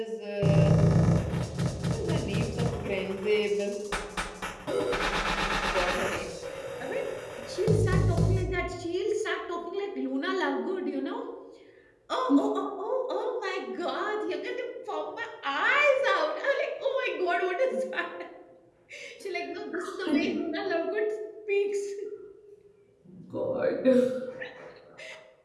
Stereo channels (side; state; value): both; identical; correlation 1.00